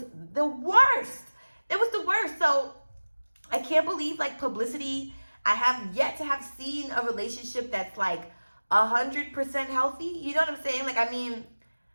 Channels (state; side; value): inverted; both; correlation -1.00